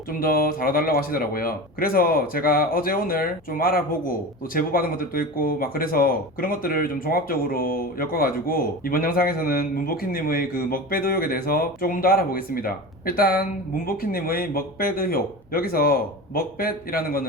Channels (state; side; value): normal; both; correlation 0.29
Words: 좀 더 다뤄달라고 하시더라고요. 그래서 제가 어제 오늘 좀 알아보고 또 제보받은 것들도 있고 막 그래서 그런 것들을 좀 종합적으로 엮어가지고 이번 영상에서는 문보키님의 그 먹배드 의혹에 대해서 조금 더 알아보겠습니다. 일단 문보키님의 먹배드 의혹, 여기서 먹배이라는